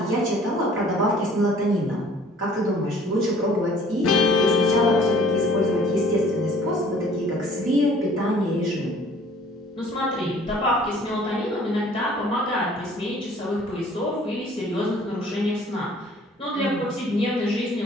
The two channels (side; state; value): both; normal; correlation 0.54